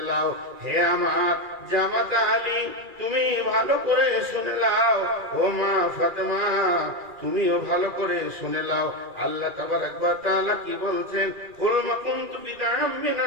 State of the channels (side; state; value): left; late; 2.4 ms